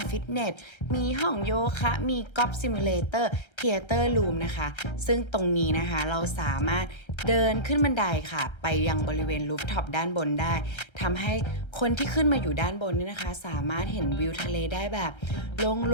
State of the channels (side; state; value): right; late; 1.3 ms